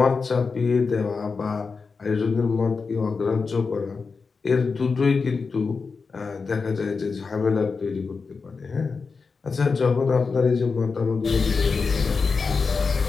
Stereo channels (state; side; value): quieter; right; 4.8 dB